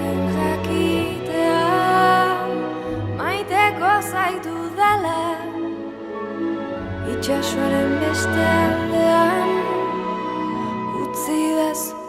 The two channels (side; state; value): both; identical; correlation 1.00